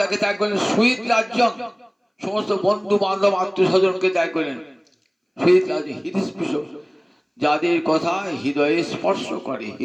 ত্যাগ করলেন? সুহৃদ রাজ্য, সমস্ত বন্ধু বান্ধব আত্মীয় স্বজনকে ত্যাগ করলেন। সুহৃদ রাজ্য হৃদস্পৃশ, যাদের কথা হৃদয়ে স্পর্শ করে,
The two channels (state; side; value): identical; both; correlation 1.00